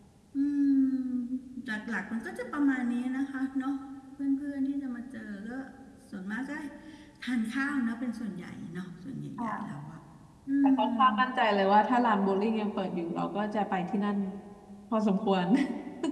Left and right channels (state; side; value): identical; both; correlation 1.00